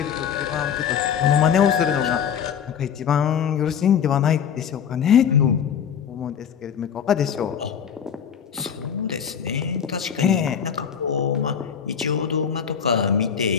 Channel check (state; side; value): quieter; right; 8.0 dB